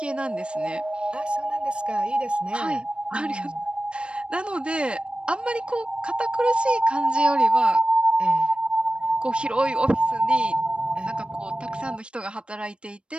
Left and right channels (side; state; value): left; late; 0.057 ms